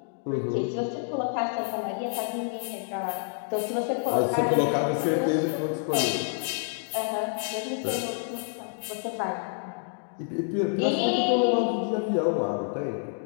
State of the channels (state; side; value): silent; right; 59 dB below the other